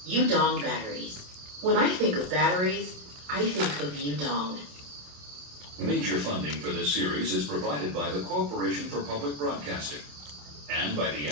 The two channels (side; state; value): left; late; 27 ms